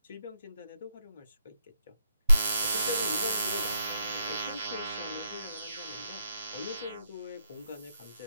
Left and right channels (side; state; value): both; inverted; correlation -0.78